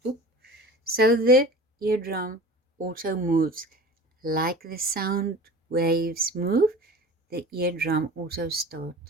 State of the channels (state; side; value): normal; both; correlation 0.38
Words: boop. So the eardrum also moves. Like the sound waves move, the eardrum also